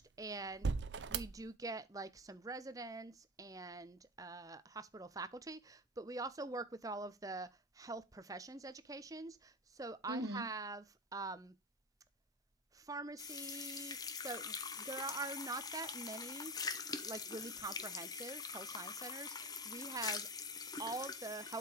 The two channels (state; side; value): normal; both; correlation 0.25